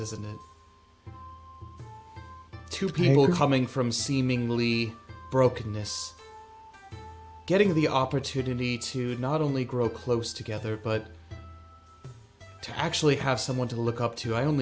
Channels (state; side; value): identical; both; correlation 1.00